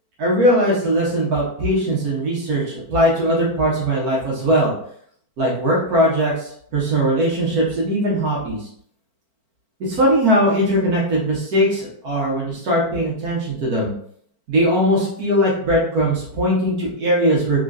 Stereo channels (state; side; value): late; left; 4.4 ms